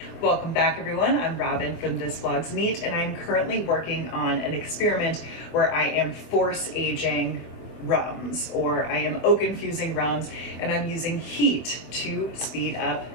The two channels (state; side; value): late; right; 24 ms